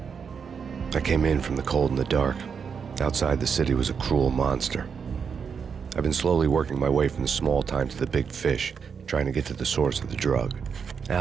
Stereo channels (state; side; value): quieter; left; 6.4 dB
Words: I came in from the cold and the dark. Outside the city was a cruel monster. I've been slowly working my way from the small time to the big fish, trying to get to the source of the drug.